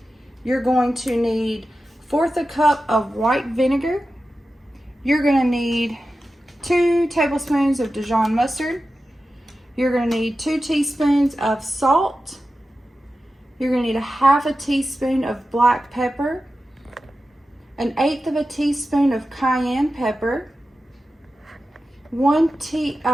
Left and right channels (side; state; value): both; normal; correlation 0.93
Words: You're going to need 1/4 cup of white vinegar. You're going to need 2 tablespoons of Dijon mustard. You're going to need 2 teaspoons of salt. You're going to need 1/2 teaspoon of black pepper, 1/8 teaspoon of cayenne pepper, 1